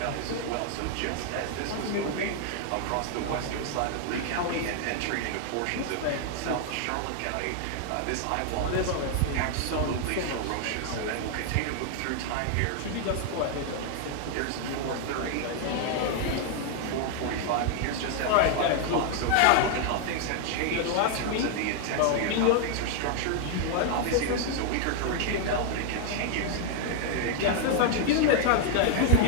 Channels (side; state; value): both; different; correlation 0.00